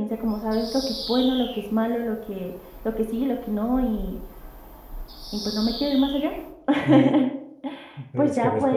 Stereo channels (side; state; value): both; identical; correlation 1.00